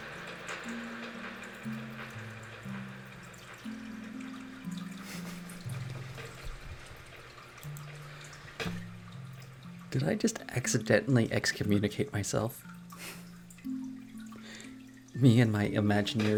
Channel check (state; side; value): identical; both; correlation 1.00